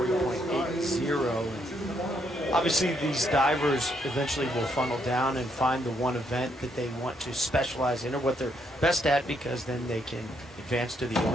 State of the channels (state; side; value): normal; both; correlation 0.74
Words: Obviously, these divers eventually will funnel down and find the one event that they want to specialize in or what they're best at, because then they can advance to the